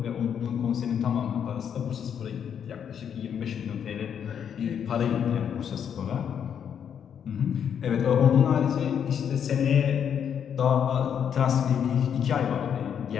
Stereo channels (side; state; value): right; quieter; 8.2 dB